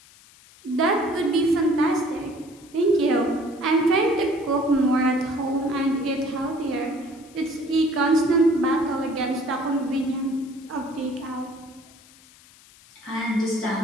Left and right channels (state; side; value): noise; left; hiss, 25 dB below the sound